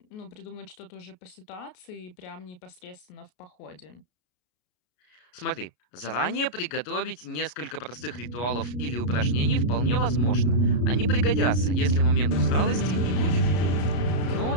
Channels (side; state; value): right; late; 33 ms